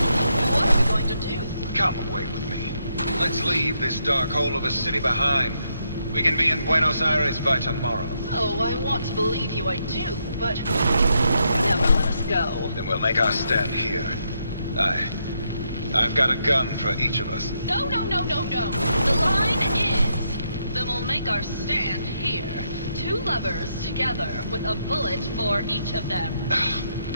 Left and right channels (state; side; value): inverted; both; correlation -0.78